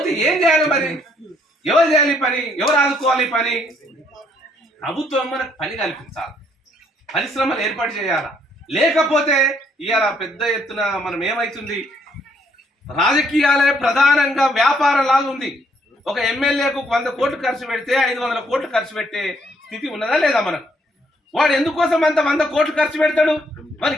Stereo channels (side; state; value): both; normal; correlation 0.69